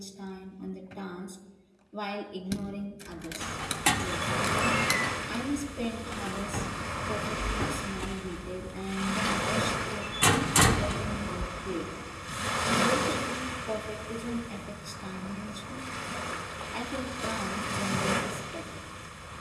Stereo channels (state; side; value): identical; both; correlation 1.00